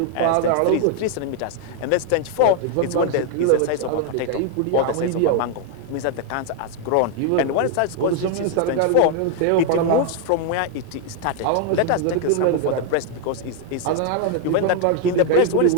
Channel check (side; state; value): both; different; correlation 0.00